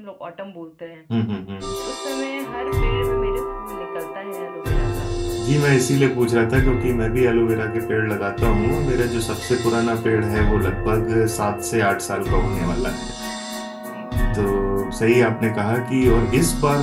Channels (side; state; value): both; identical; correlation 1.00